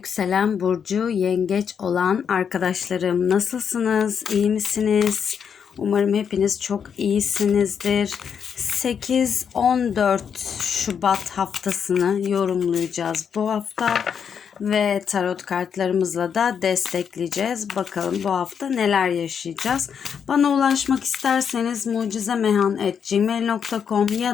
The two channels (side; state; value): right; quieter; 7.3 dB